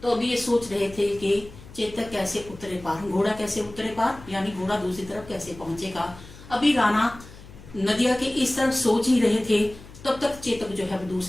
तो अभी ये सोच रहे थे कि चेतक कैसे उतरे पार, घोड़ा कैसे उतरे पार यानी घोड़ा दूसरी तरफ कैसे पहुंचेगा। अभी राणा नदिया के इस तरफ सोच ही रहे थे, तब तक चेतक जो है वो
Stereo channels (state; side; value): noise; left; hum, 18 dB below the sound